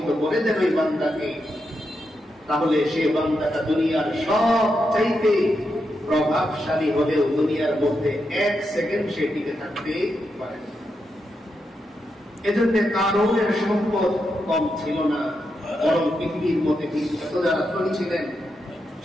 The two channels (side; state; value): both; normal; correlation 0.85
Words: করে দেন ওই বান্দাকে, তাহলে সে বান্দাটা দুনিয়ার সব চাইতে প্রভাবশালী হলেও দুনিয়ার মধ্যে এক সেকেন্ড সে টিকে থাকতে পারে না। এজন্য কারণের সম্পদ কম ছিল না, বরং পৃথিবীর মধ্যে এত যারা ধনী ছিলেন,